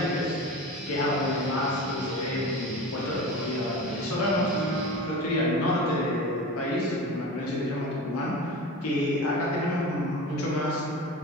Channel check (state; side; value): normal; both; correlation 0.31